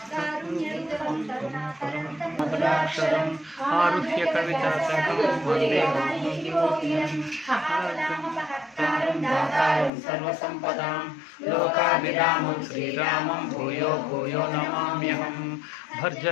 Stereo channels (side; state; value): right; drops out; at 9.9 s